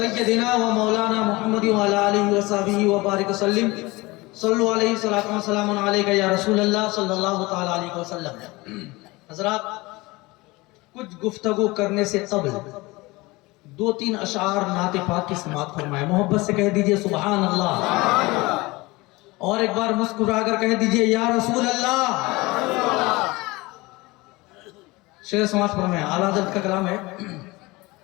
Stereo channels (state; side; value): quieter; right; 22.3 dB